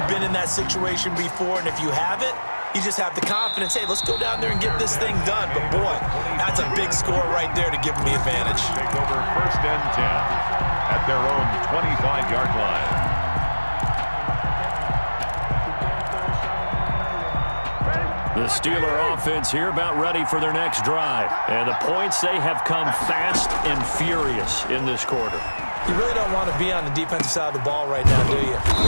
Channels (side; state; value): both; inverted; correlation -1.00